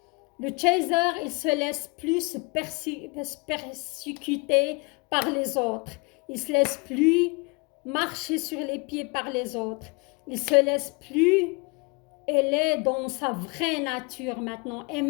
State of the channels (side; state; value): right; quieter; 29.7 dB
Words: Le chaser, il se laisse plus se persécuter par les autres. Il se laisse plus marcher sur les pieds par les autres. Il se laisse plus, elle est dans sa vraie nature maintenant. Et